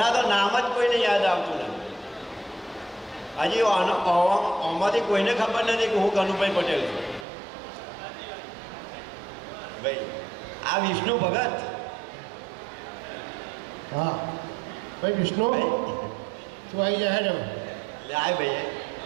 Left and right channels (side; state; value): left; drops out; at 7.2 s